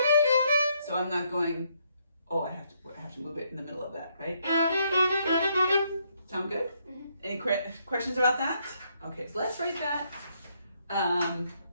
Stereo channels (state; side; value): inverted; both; correlation -0.73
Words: So I'm not going, oh, I have to move it in the middle of that, right? Sound good? Mm-hmm. Any questions about that? Okay, so let's write that